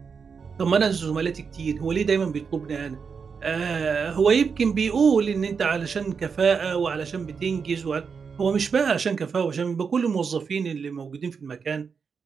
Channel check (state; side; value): quieter; left; 5.8 dB